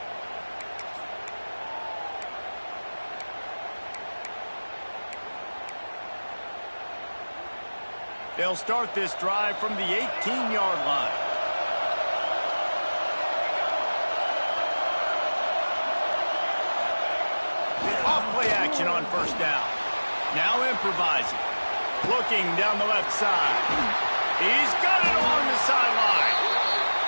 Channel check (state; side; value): inverted; both; correlation -1.00